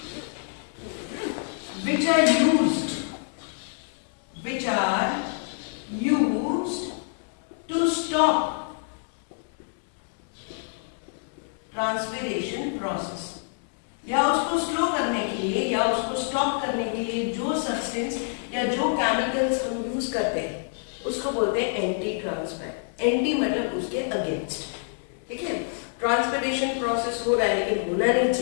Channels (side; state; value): right; silent; digital silence